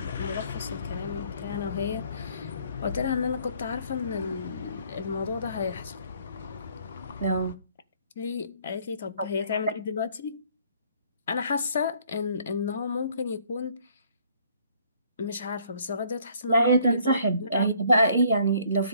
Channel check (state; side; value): inverted; both; correlation -0.61